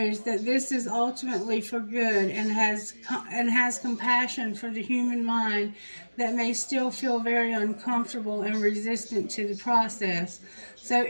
that this is ultimately for good and has compassion for the human mind that may still feel very uncomfortable and resistant to the process. So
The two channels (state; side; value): inverted; both; correlation -1.00